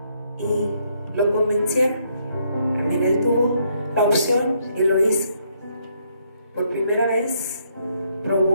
Y lo convencieron. También él tuvo la opción y lo hizo. Por primera vez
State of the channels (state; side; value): inverted; both; correlation -0.72